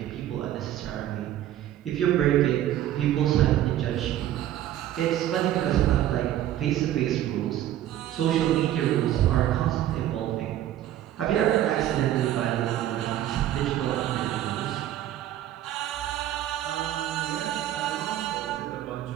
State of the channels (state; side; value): quieter; left; 12.6 dB